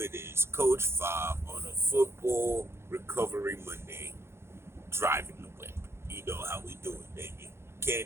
is. Coach Fob on a football recovery Monday, driving the whip. You know how we do it, baby.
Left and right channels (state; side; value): late; left; 0.12 ms